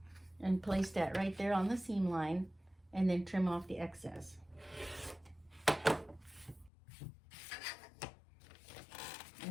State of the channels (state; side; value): drops out; right; at 6.7 s